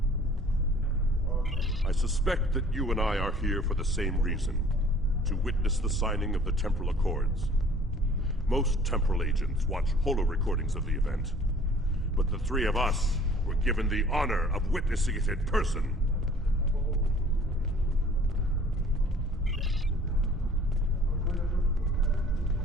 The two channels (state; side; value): normal; both; correlation 0.52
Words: I suspect that you and I are here for the same reason, to witness the signing of the Temporal Accords. Most temporal agents watch holo recordings of the event, but the three of us were given the honor of witnessing it in person.